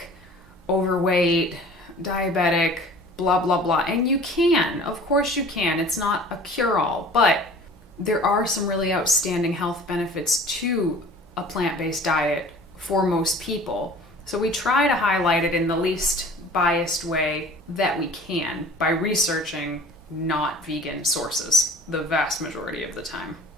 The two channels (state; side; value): normal; both; correlation 0.45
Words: overweight, diabetic, blah, blah, blah. And you can, of course you can. It's not a cure-all, but there are some really outstanding health benefits to a plant-based diet for most people. So we try to highlight it in the least biased way that we can by researching not vegan sources the vast majority of the time.